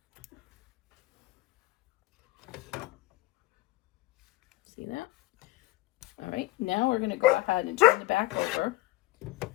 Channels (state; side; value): quieter; right; 19.3 dB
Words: See that? All right, now we're going to go ahead and turn the back over,